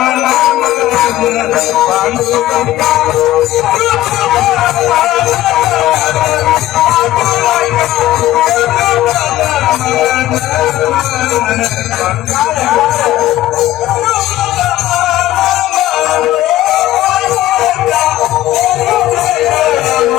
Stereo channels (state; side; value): quieter; right; 14.6 dB